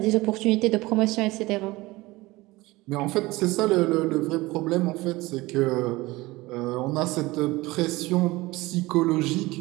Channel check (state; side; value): quieter; left; 20.5 dB